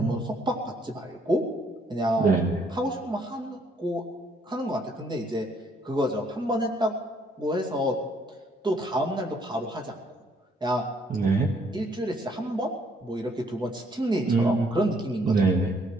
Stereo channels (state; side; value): normal; both; correlation 0.66